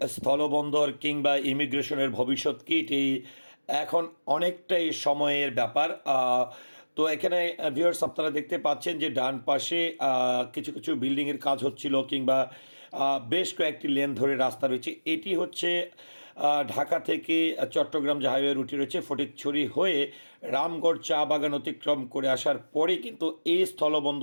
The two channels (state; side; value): inverted; both; correlation -1.00